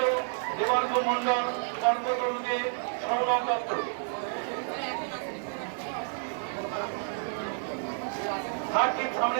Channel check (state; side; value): silent; left; 58 dB below the other